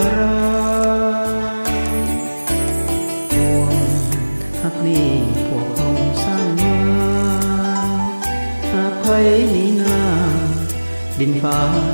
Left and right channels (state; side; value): inverted; both; correlation -1.00